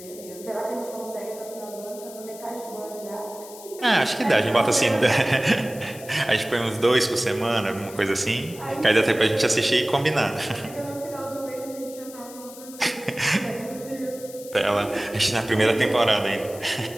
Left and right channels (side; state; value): left; noise; hiss, 17 dB below the sound